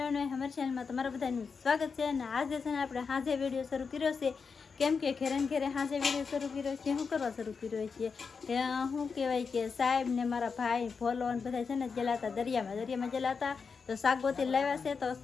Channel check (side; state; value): right; quieter; 5.4 dB